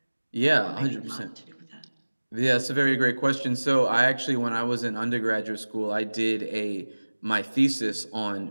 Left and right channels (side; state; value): both; inverted; correlation -1.00